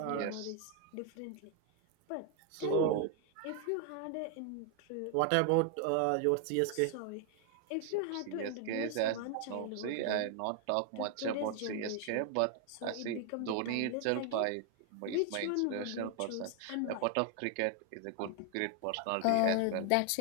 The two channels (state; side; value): different; both; correlation 0.00